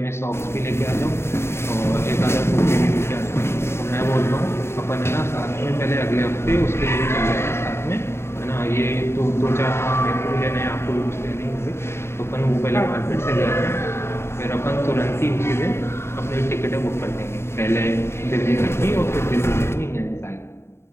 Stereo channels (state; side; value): late; right; 0.12 ms